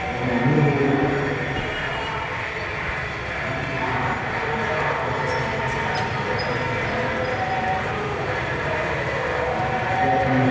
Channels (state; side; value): identical; both; correlation 1.00